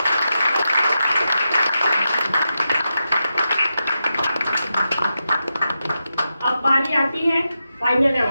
अब बारी आती है फाइनल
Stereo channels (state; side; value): inverted; both; correlation -0.88